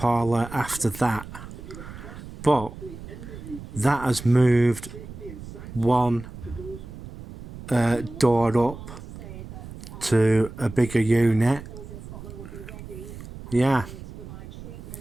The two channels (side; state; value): right; noise; rumble, 13 dB below the sound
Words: after that, but that has moved one door up to a bigger unit. Yeah.